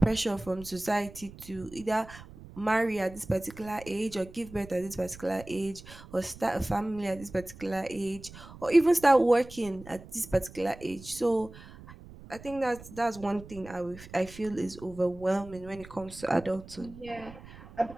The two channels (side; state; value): right; noise; rumble, 17 dB below the sound